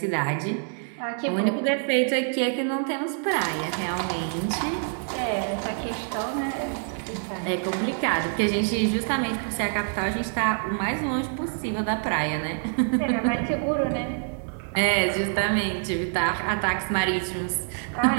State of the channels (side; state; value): left; silent; 59 dB below the other